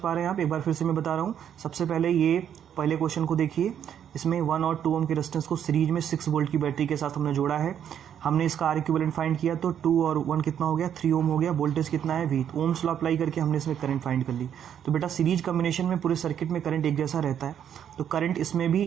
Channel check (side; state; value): left; quieter; 9.2 dB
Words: रहे हैं आप? एक बार फिर से मैं बता रहा हूँ। सबसे पहले ये पहले क्वेश्चन को देखिए, इसमें 1 और 2 ओम के रेजिस्टेंस को सीरीज में 6 वोल्ट की बैटरी के साथ हमने जोड़ा है। हमने इसका आर इक्विवेलेंट फाइंड किया तो 2 और 1 कितना हो गया 3 ओम हो गया। वोल्टेज कितना है V, ओम्स लॉ अप्लाई करके हमने इसमें करंट फाइंड कर ली। तो बेटा सीरीज कॉम्बिनेशन में पूरे सर्किट में करंट एक जैसा रहता है, तो करंट इसमें